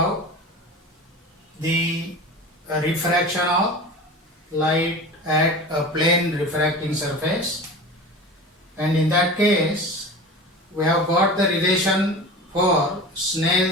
the refraction of light at a plane refracting surface, and in that case we have got the relation for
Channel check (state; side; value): normal; both; correlation 0.33